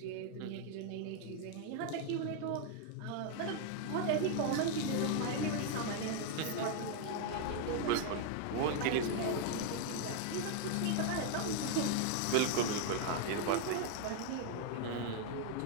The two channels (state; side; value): different; both; correlation 0.00